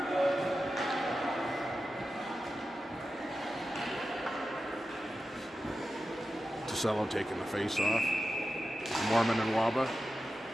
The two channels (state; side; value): normal; both; correlation 0.92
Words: Tosello taking the face off. Mormon and Waba.